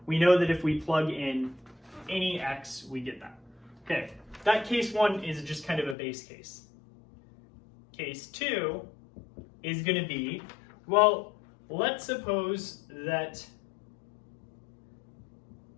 we know that if we plug in any x, we get that. Okay, that case 1 is just kind of a base case. Case 2 is going to be, well, let's suppose that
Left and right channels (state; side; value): drops out; right; at 6.0 s